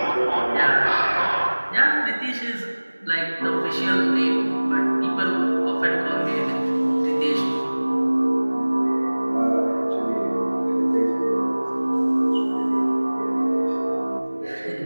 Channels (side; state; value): both; inverted; correlation -1.00